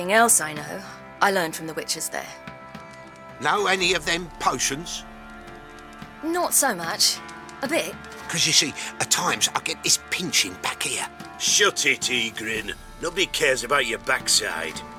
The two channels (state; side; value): identical; both; correlation 1.00